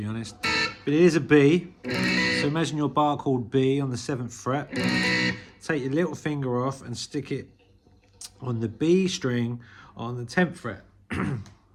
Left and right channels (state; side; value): identical; both; correlation 1.00